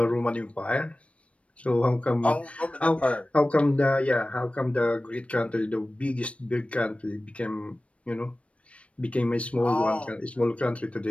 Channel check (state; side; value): late; right; 0.063 ms